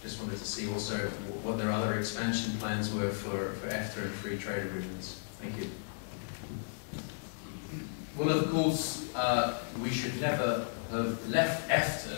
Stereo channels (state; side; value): silent; right; 55 dB below the other